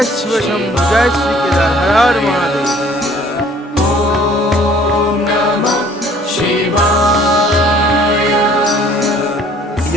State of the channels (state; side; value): normal; both; correlation 0.56